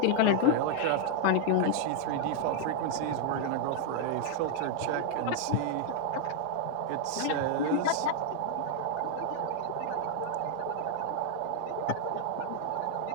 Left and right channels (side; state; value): both; different; correlation -0.01